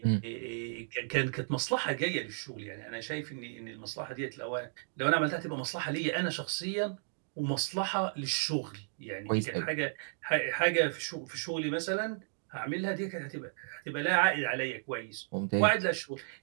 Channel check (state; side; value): silent; left; digital silence